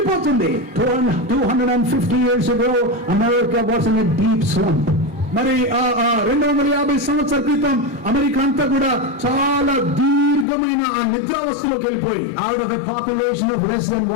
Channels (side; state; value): right; drops out; at 10.5 s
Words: 250 years ago, America was in a deep slump. మరి 250 సంవత్సరాల క్రితం అమెరికా అంతా కూడా చాలా దీర్ఘమైన ఆ నిద్రావస్థలోకి వెళ్ళిపోయి, out of a population of less than